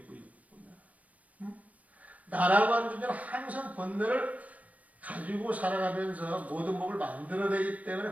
무의법. 나라고 하는 존재는 항상 본능을 가지고 살아가면서 모든 법을 만들어내기 때문에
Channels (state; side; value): late; left; 0.069 ms